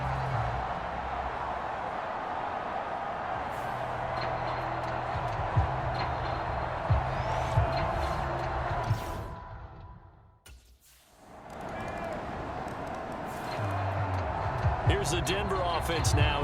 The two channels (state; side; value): identical; both; correlation 1.00